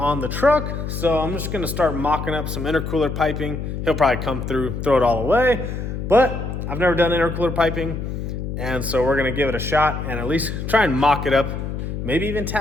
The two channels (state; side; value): noise; left; hum, 5 dB below the sound